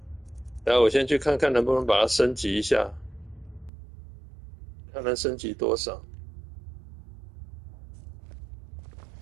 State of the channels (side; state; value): left; drops out; at 3.7 s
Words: 然后我先去看看能不能把它升级一下，看能升级多少。